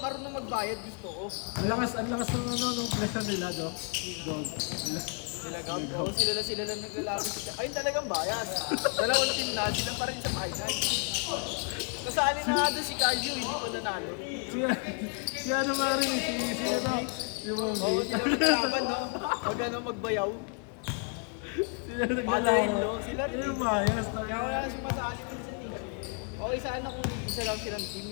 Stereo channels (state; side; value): quieter; right; 37.7 dB